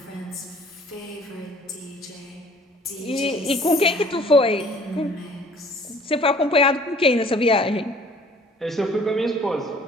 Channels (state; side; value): normal; both; correlation 0.54